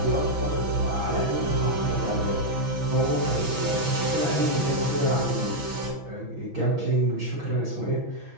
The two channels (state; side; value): late; left; 6.0 ms